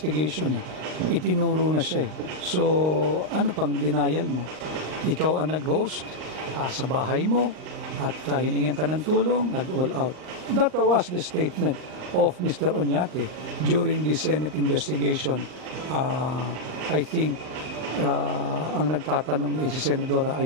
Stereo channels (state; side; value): late; left; 38 ms